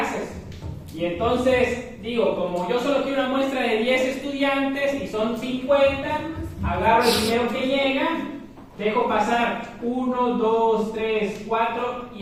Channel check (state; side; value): identical; both; correlation 1.00